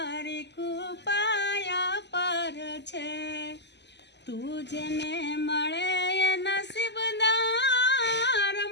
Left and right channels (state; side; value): late; right; 0.50 ms